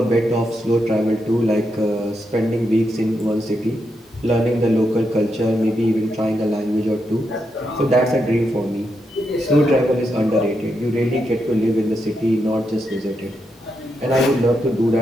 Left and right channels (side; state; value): both; normal; correlation 0.83